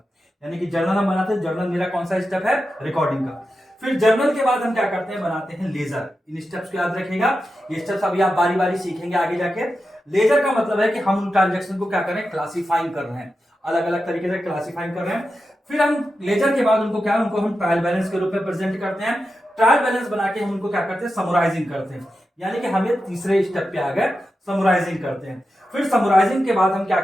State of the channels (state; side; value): normal; both; correlation 0.90